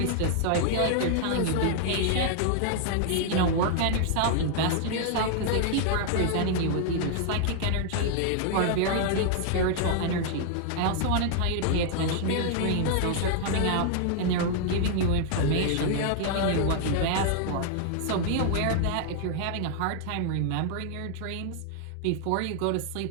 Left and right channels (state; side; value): different; both; correlation 0.00